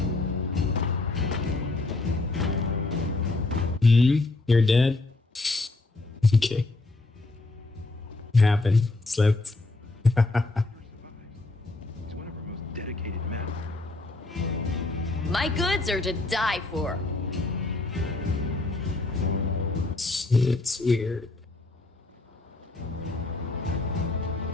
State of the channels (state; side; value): quieter; right; 3.1 dB